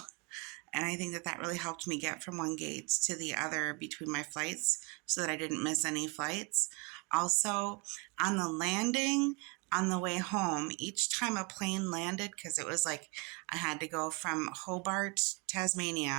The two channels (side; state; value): left; quieter; 29.8 dB